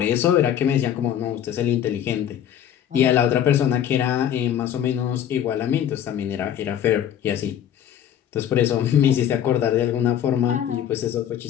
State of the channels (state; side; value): quieter; right; 10.2 dB